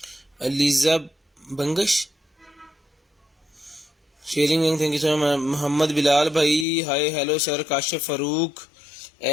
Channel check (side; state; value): right; drops out; at 6.7 s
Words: Aliza Bangash sharing link thank you so much. Mohammad Bilal भाई hi hello sir. Kashif Farooq